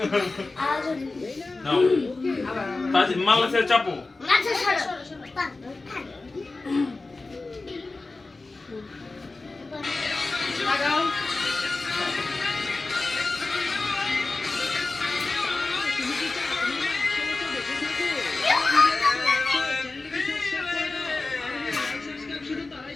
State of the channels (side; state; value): right; quieter; 3.4 dB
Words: নাও আবার তাজ মালা সে চাপো আচ্ছা সরো লাগাও। তুমি কি চাও তোমার 100 বছর বেঁচে থাকুক? চ্যানেলটিকে সাবস্ক্রাইব করে দাও। আর লাইক সাবস্ক্রাইব শুধু তারাই